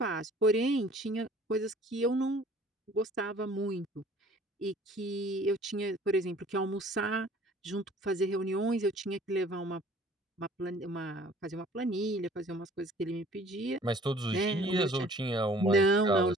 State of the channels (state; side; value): normal; both; correlation 0.52